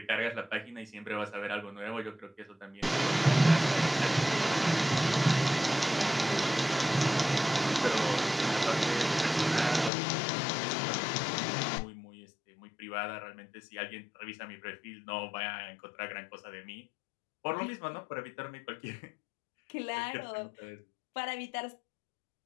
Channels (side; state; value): right; drops out; at 9.9 s